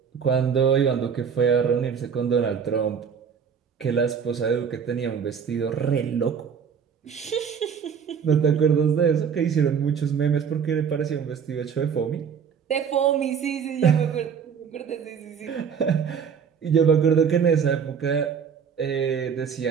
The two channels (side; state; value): left; quieter; 7.0 dB